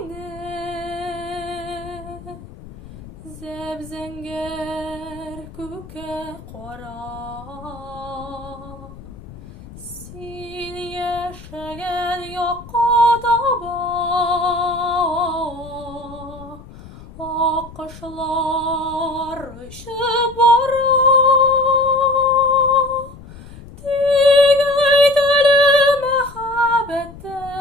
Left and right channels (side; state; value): left; noise; rumble, 17 dB below the sound